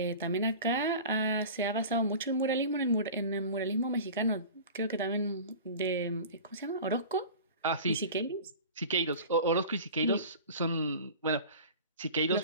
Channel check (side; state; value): both; inverted; correlation -0.37